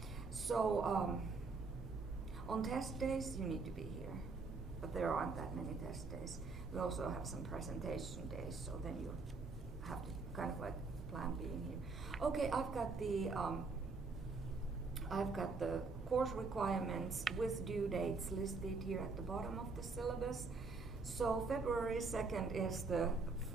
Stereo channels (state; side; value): quieter; left; 4.1 dB